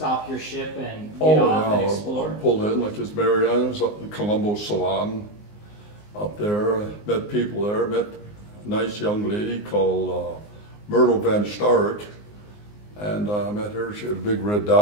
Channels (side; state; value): right; late; 19 ms